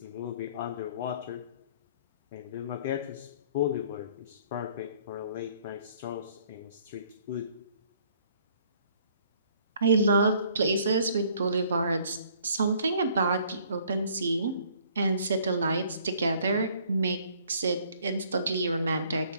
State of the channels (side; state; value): both; inverted; correlation -0.60